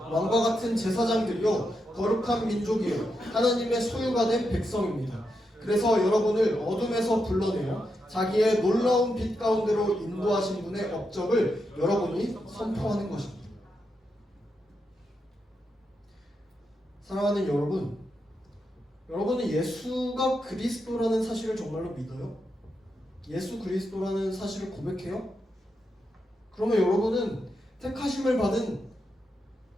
같은 제사장들이요 거룩한 민족이요 하나님의 소유가 된 백성입니다. 그래서 여러분을 어둠에서 불러내어 자기의 놀라운 빛 가운데로 인도하신 분의 업적을 여러분이 선포하는 것입니다. 사랑하는 여러분, 여러분은 예수가 그리스도라는 사실을 정말로 믿어요? 예수 그리스도라는 사실을 고백해요? 그러면 여러분은 택하심을 받은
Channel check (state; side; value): normal; both; correlation 0.85